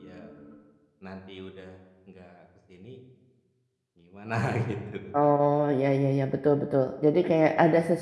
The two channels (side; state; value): both; identical; correlation 1.00